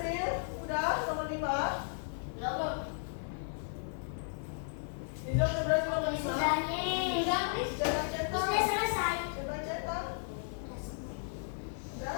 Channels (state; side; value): silent; right; 55 dB below the other